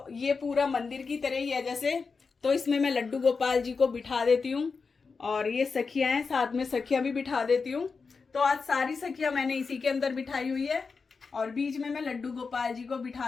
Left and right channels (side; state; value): right; quieter; 4.8 dB